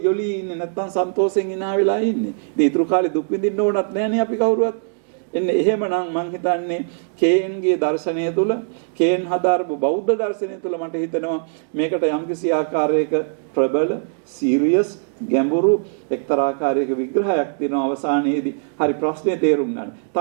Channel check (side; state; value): left; silent; digital silence